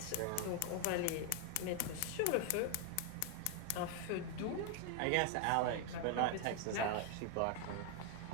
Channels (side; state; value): both; different; correlation 0.01